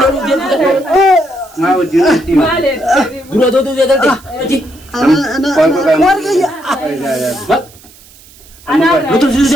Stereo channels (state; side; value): noise; right; hiss, 24 dB below the sound